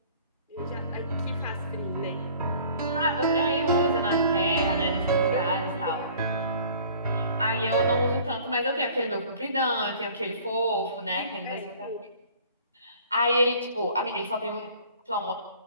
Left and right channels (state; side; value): inverted; both; correlation -0.50